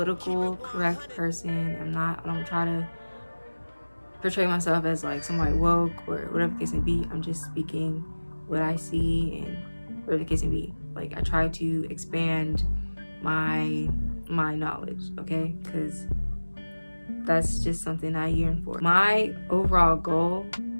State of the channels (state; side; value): inverted; both; correlation -1.00